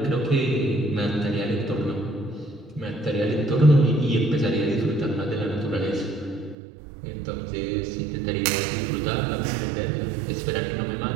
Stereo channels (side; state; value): left; drops out; at 6.6 s